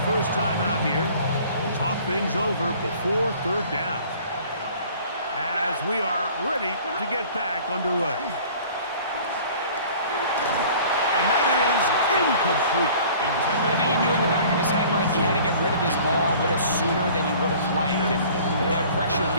first timeout here. Talk things over before 3rd down. As we are ready to get back underway. And that is incomplete. I think he knew in the back of his head, Mike, he had to get rid of this ball a little sooner than he would have liked. And with that pressure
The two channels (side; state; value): both; inverted; correlation -0.49